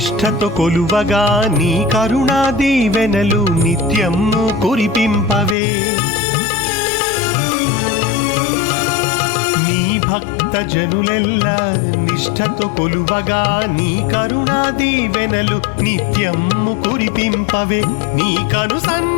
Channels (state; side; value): drops out; right; at 5.6 s